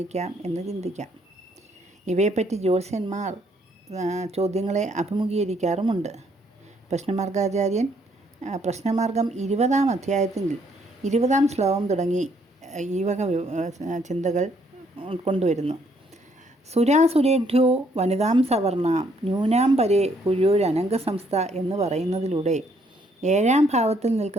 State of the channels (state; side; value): normal; both; correlation 0.68